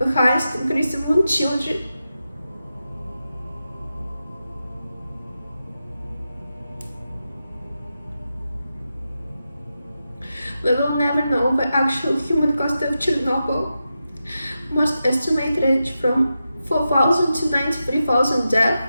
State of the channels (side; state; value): both; inverted; correlation -0.90